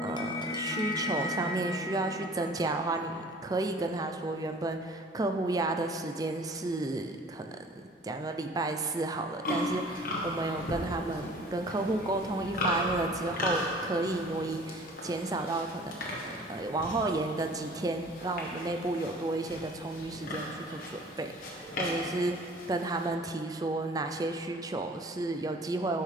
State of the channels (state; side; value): normal; both; correlation 0.48